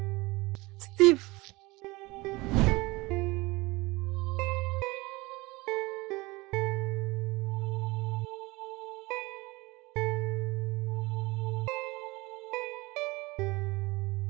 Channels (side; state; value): left; quieter; 22.5 dB